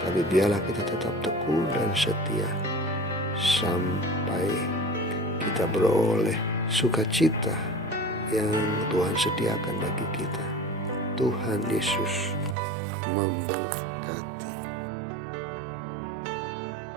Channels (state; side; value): drops out; left; at 12.6 s